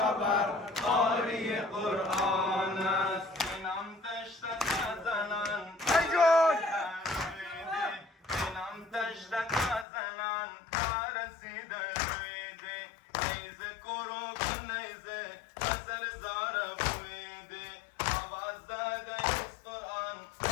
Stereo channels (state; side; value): drops out; right; at 9.9 s